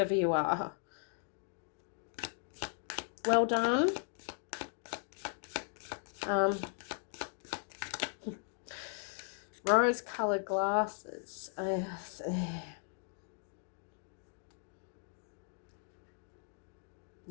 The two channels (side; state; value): right; silent; 53 dB below the other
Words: you are. Well done. Rose-coloured glasses.